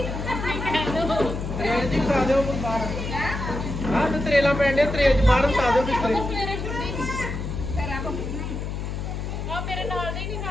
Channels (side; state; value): left; noise; hum, 5 dB below the sound